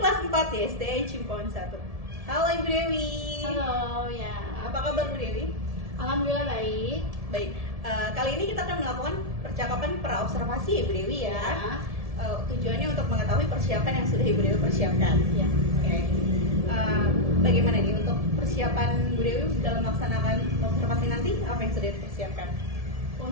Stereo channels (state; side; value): late; left; 1.7 ms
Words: kelas 4 di SDA Cimpon 1. Halo Ibu Dewi. Halo, ya. Apa kabar Bu Dewi? Alhamdulillah baik. Baik, kali ini kita akan melakukan percakapan praobservasi Ibu Dewi ya. Tujuannya untuk mengetahui persiapan yang sudah Ibu Dewi persiapkan. Ya. Oke. Bagaimana nih untuk persiapan Bu Dewi dalam melaksanakan observasi nanti? Apa yang sudah dipersiapkan?